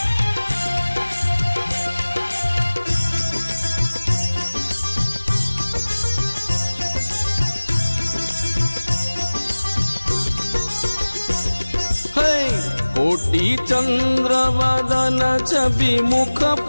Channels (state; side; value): inverted; both; correlation -1.00